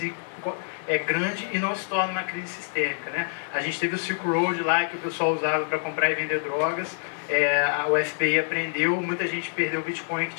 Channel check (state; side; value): silent; right; digital silence